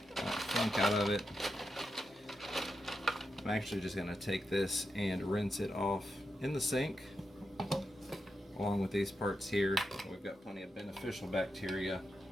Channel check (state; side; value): normal; both; correlation 0.87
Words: that funk out of it. I'm actually just going to take this and rinse it off in the sink along with these parts here. We've got plenty of beneficial bacteria